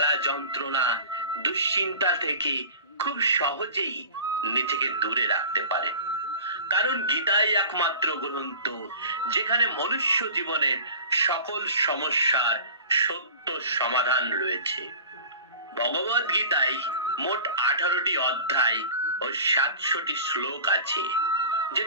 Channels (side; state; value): both; inverted; correlation -0.39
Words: যন্ত্রণা দুশ্চিন্তা থেকে খুব সহজেই নিজেকে দূরে রাখতে পারে। কারণ গীতাই একমাত্র গ্রন্থ যেখানে মনুষ্য জীবনের সকল সমস্যার সত্য সমাধান রয়েছে। ভগবত গীতায় মোট 18টি অধ্যায় ও 700টি শ্লোক আছে,